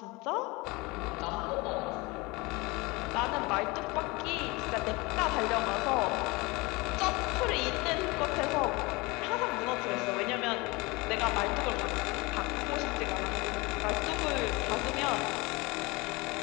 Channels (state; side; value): quieter; right; 24.6 dB